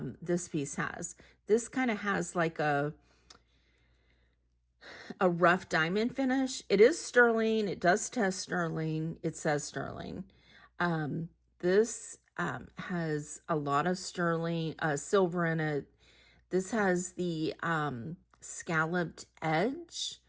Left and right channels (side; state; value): both; identical; correlation 1.00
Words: this piece has. This kind of has like a rough diamond finish. It is sterling. It does test sterling. It says sterling. This has a lot of sterling, silver in it. This has the scalloped edge.